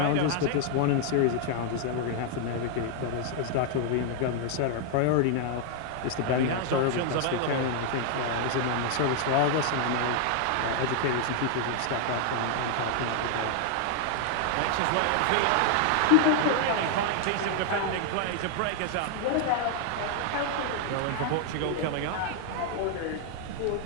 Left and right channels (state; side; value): different; both; correlation 0.00